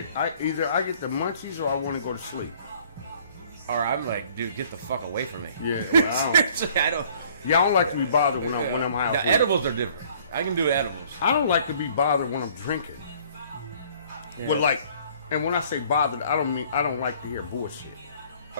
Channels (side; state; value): both; inverted; correlation -0.57